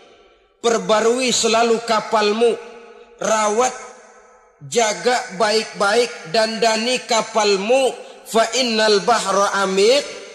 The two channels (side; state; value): both; identical; correlation 1.00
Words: Perbarui selalu kapalmu, rawat, jaga baik-baik, dandani kapalmu, fa innal bahra